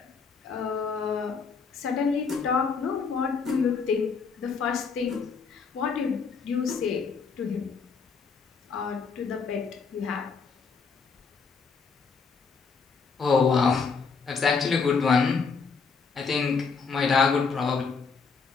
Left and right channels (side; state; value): right; quieter; 5.2 dB